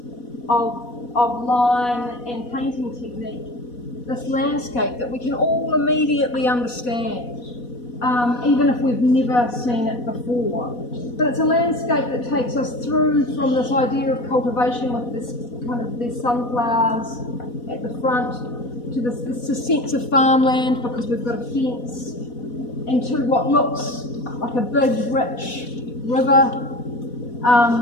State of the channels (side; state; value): right; late; 4.1 ms